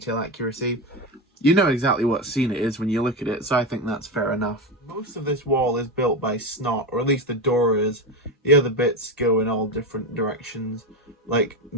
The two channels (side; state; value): both; normal; correlation 0.16